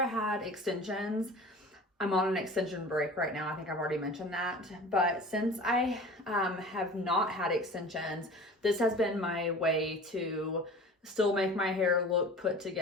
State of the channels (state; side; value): normal; both; correlation 0.39